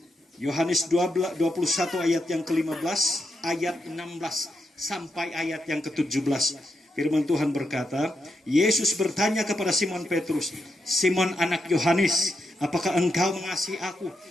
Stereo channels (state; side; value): normal; both; correlation 0.83